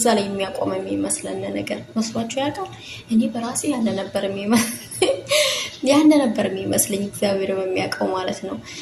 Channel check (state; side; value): identical; both; correlation 1.00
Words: ላይ የሚያቆም የሚመስለን ነገር መስሏችሁ ያውቃል? እኔ በራሴ ያነ ነበር የሚመስለኝ እግዚአብሔር በሚያውቀው ማለት ነው።